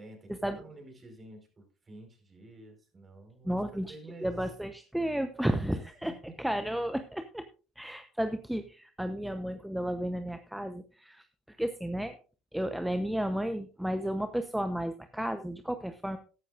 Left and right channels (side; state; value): both; normal; correlation 0.96